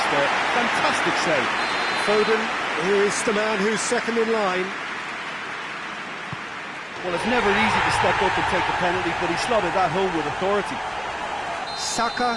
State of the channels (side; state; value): both; identical; correlation 1.00